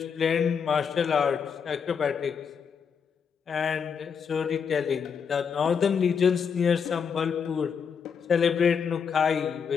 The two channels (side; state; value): right; quieter; 6.6 dB